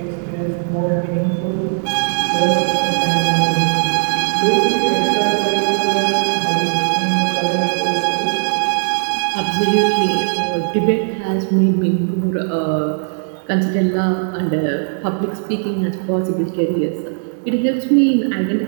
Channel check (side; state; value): left; silent; digital silence